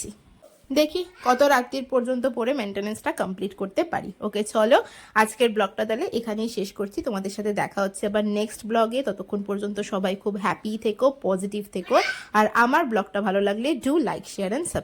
দেখি কত রাত্রির পর্যন্ত পড়ে মেনটেনেন্সটা কমপ্লিট করতে পারি। ওকে চলো, আজকের ব্লগটা তাহলে এখানেই শেষ করছি। তোমাদের সাথে দেখা হচ্ছে আবার নেক্সট ব্লগে। ততক্ষণ পর্যন্ত সবাই খুব হ্যাপি থেকো, পজিটিভ থেকো। আর আমার ব্লগটা ভালো লাগলে do like, share and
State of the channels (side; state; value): both; identical; correlation 1.00